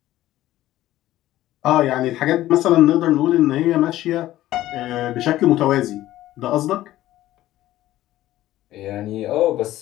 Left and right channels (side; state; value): right; quieter; 14.8 dB